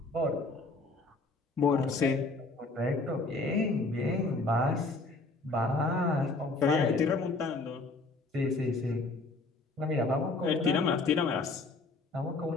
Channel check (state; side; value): quieter; right; 3.4 dB